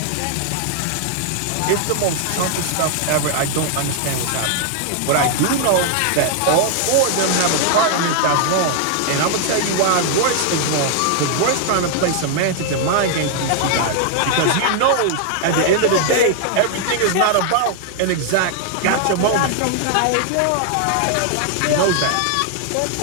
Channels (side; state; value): both; different; correlation 0.00